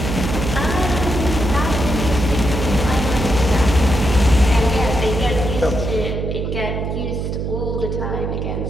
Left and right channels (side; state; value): right; noise; hum, 3 dB below the sound